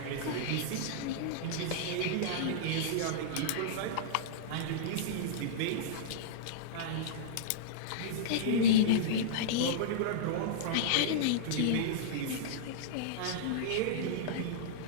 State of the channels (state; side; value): different; both; correlation -0.03